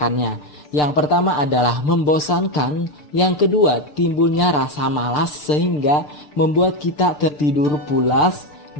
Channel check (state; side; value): late; right; 6.7 ms